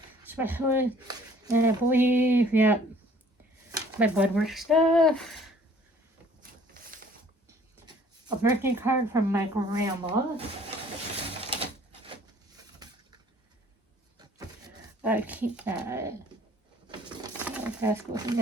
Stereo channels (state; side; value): normal; both; correlation 0.56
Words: specialist. And I believe, yeah, my blood work stuff. A birthday card from my grandma. I keep that. That's goes in